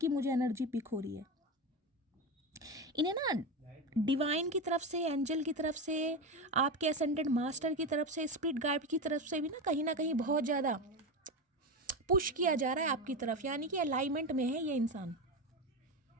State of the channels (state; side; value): normal; both; correlation 0.18